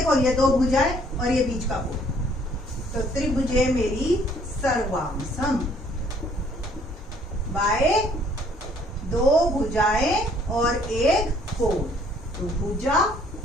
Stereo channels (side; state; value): both; normal; correlation 0.61